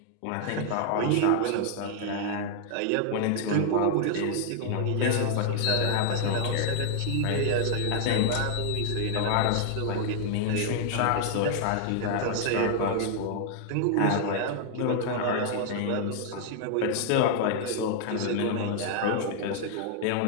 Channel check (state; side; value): different; both; correlation 0.00